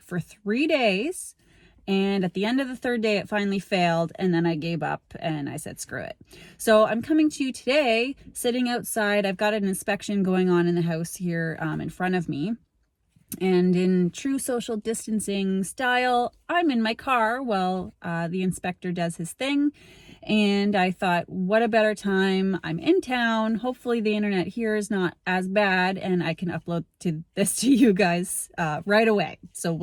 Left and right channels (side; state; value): both; identical; correlation 1.00